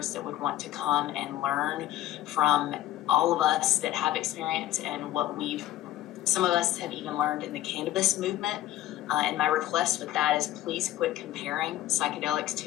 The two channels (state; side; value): quieter; right; 14.0 dB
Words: that would want to come and learn from all of us that have experience and what some of us have even learned in the cannabis movement. And my request with that is please quit comparing psychedelics